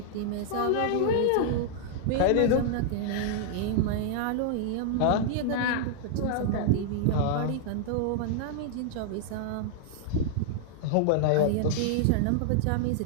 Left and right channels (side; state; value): both; different; correlation -0.01